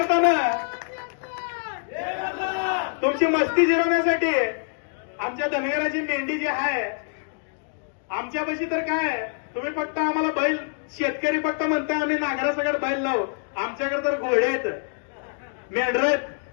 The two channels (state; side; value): silent; right; 56 dB below the other